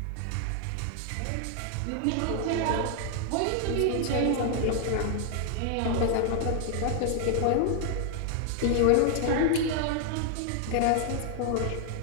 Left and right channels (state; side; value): different; both; correlation 0.00